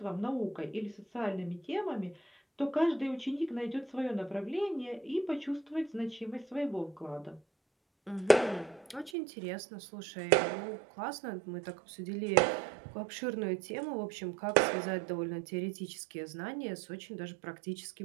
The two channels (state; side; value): drops out; left; at 9.1 s